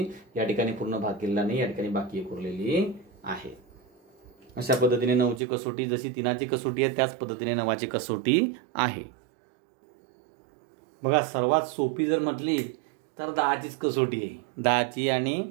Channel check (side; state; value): left; drops out; at 5.4 s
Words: या ठिकाणी पूर्ण भाग केलेला नाही, या ठिकाणी बाकी 1 उरलेली आहे. अशा पद्धतीने 9ची कसोटी जशी 3ची कसोटी आहे त्याच पद्धतीने 9ची कसोटी आहे. बघा, सर्वात सोपी जर म्हटली तर 10चीच कसोटी आहे. 10ची आणि